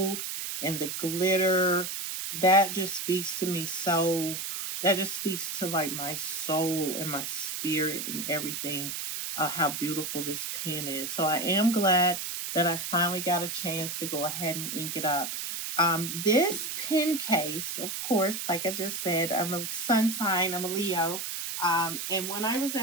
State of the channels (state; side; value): noise; right; hiss, 4 dB below the sound